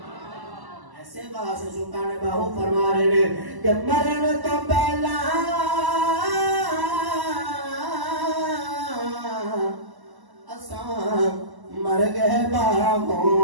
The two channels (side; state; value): left; late; 1.0 ms